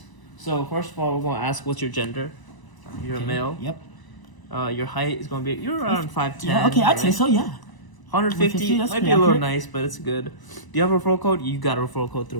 So first of all, we're gonna ask what's your gender. You're a male. Yep. Your height is gonna be you're around 5'10". Yeah, okay, I'd say so, yeah. 150 that's might be pretty a little accurate. nice, but it's good. Do you have a referral code? You got a referral code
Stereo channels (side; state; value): right; late; 1.0 ms